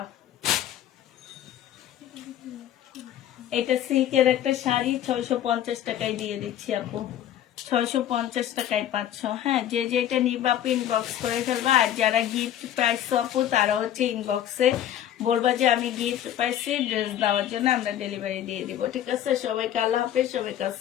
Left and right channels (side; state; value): right; quieter; 11.3 dB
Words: এটা সিল্কের একটা শাড়ি 650 টাকায় দিয়ে দিচ্ছি আপু। 650 টাকায় পাচ্ছ। হ্যাঁ যে যেটা নিবা আপু ইনবক্স করে ফেলবা। আর যারা গিফট পাইছো আপু তারা হচ্ছে ইনবক্সে বলবা যে আমি গিফট পাইছি, ড্রেস দেওয়ার জন্য আমরা ডেলিভারি দিয়ে দিব, ঠিক আছে? সবাইকে আল্লাহ হাফেজ, সবাইকে